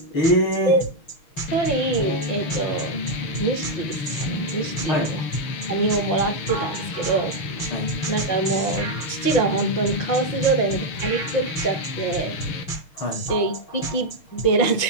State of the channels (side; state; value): right; late; 6.4 ms